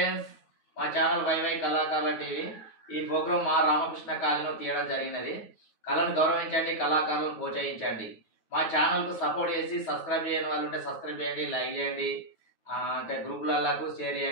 మా channel YY కళాకారుల TV. ఈ ప్రోగ్రాం మా రామకృష్ణ కాలనీలో తీయడం జరిగినది. కళను గౌరవించండి, కళాకారులను ప్రోత్సహించండి. మా ఛానల్కు సపోర్ట్ చేసి సబ్స్క్రైబ్ చేయని వాళ్ళు ఉంటే సబ్స్క్రైబ్ చేయండి, లైక్ చేయండి, ఇంకా గ్రూపులకు షేర్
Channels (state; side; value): late; right; 9.3 ms